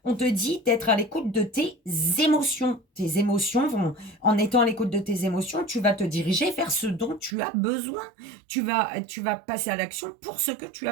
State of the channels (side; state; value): left; drops out; at 7.4 s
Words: On te dit d'être à l'écoute de tes émotions. Tes émotions vont, en étant à l'écoute de tes émotions, tu vas te diriger vers ce dont tu as besoin. Tu vas passer à l'action pour ce que tu as